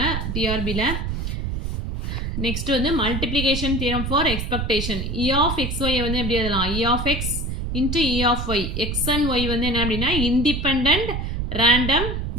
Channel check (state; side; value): noise; right; rumble, 3 dB below the sound